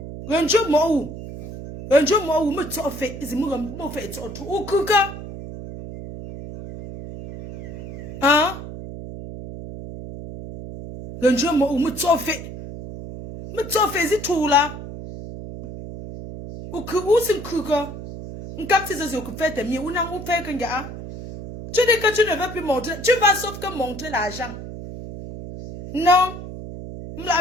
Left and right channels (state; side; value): noise; right; hum, 10 dB below the sound